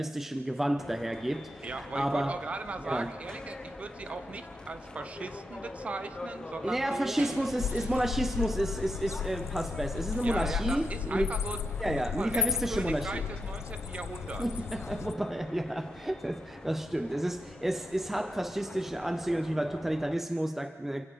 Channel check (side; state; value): both; normal; correlation 0.83